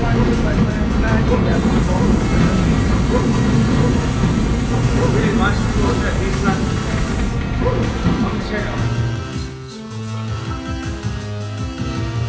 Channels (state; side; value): identical; both; correlation 1.00